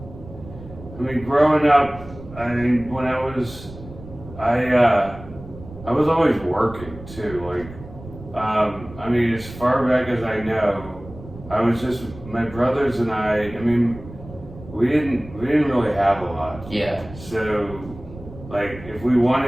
growing up, when I was always working too. As far back as I know, I was just, my brothers and I we didn't really have a lot. Yeah. So, if we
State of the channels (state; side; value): noise; right; rumble, 16 dB below the sound